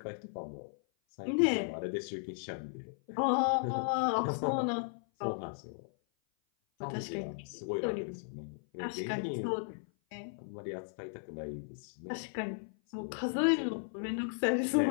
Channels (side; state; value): right; silent; 54 dB below the other